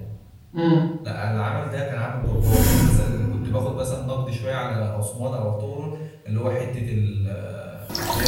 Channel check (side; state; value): both; identical; correlation 1.00